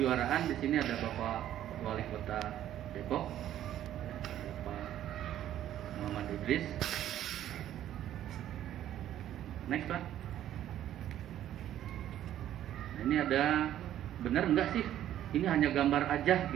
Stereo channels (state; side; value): quieter; left; 11.8 dB